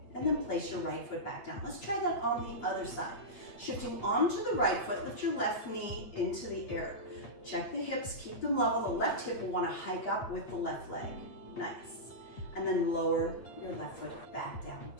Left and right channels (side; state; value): right; late; 8.7 ms